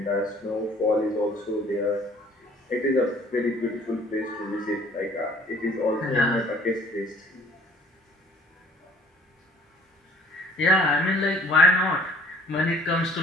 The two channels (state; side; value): normal; both; correlation 0.55